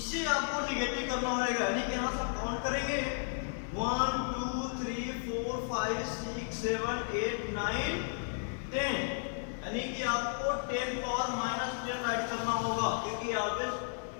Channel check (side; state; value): right; silent; digital silence